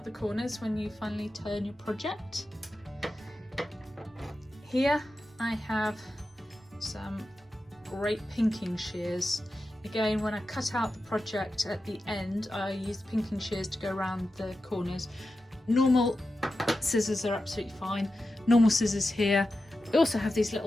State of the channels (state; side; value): normal; both; correlation 0.91